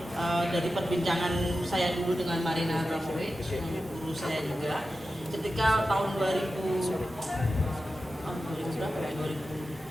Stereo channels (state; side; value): normal; both; correlation 0.92